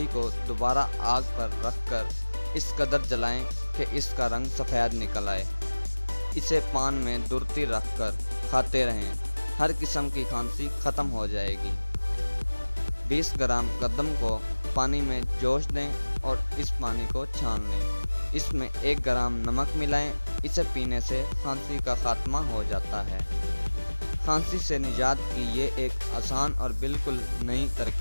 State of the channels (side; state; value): both; inverted; correlation -1.00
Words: को दोबारा आग पर रखकर इस कदर जलाएं कि इसका रंग सफ़ेद निकल आए। इसे पान में दुर्ती रखकर खाते रहें, हर किस्म की खांसी ख़त्म हो जाएगी। 20 ग्राम गंदम को पानी में जोश दें और इस पानी को छान लें। इसमें 1 ग्राम नमक मिलाएं, इसे पीने से खांसी का ख़ात्मा हो जाता है। खांसी से निजात की ये एक आसान और बिल्कुल नई